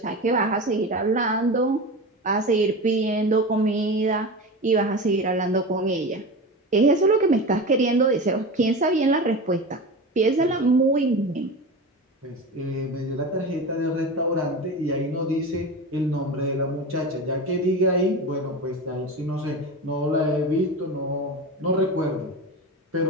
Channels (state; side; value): normal; both; correlation 0.27